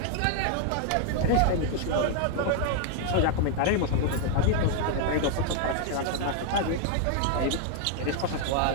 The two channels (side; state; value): both; different; correlation 0.00